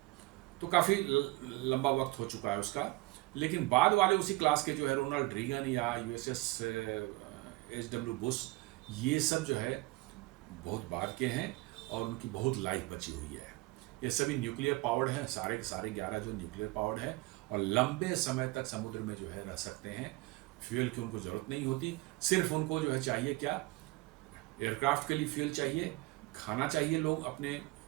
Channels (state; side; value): quieter; left; 22.0 dB